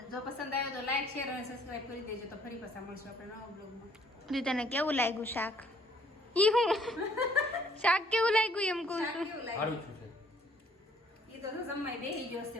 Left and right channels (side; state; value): both; normal; correlation 0.62